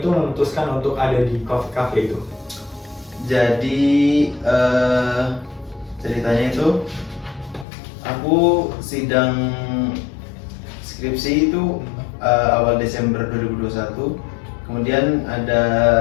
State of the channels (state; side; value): drops out; right; at 7.7 s